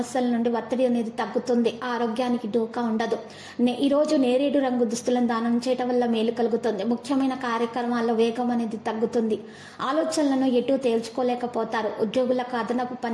నుండి ఒత్తిడి అనేది తగ్గుతుంది. ఆరోగ్యానికి డోకా ఉండదు. ఈ రోజు నేరేడు రంగు దుస్తులను దానం చేయటం వల్ల మేలు కలుగుతుంది. ముఖ్యమైన కార్యక్రమాల్లో వేగం అనేది తగ్గుతుంది. ఆలోచనలను ఎటు తేల్చుకోలేకపోతారు. ఉద్యోగులకు అదనపు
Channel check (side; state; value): both; identical; correlation 1.00